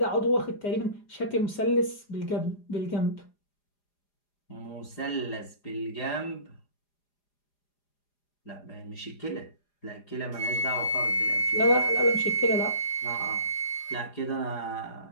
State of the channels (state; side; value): late; right; 4.9 ms